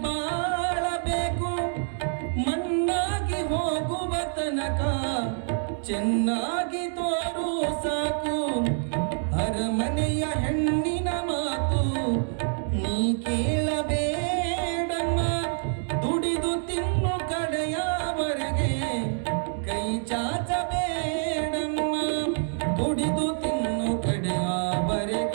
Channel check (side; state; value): left; silent; digital silence